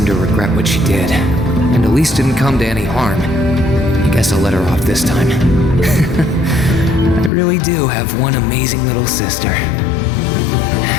to regret what she did, and Elise didn't come to any harm. I guess I'll let her off this time. I really do have one amazing little sister.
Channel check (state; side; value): drops out; right; at 7.3 s